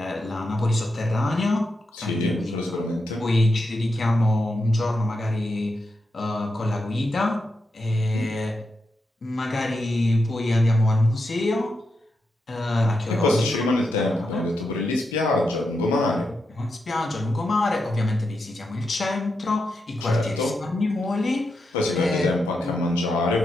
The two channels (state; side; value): normal; both; correlation 0.85